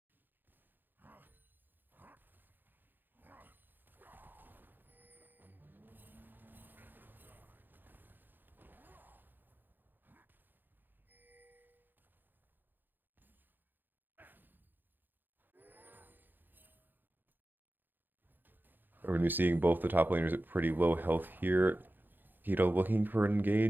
We're going to be seeing both the top laners at pretty low health here. Hito looking for an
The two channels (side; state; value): left; late; 0.091 ms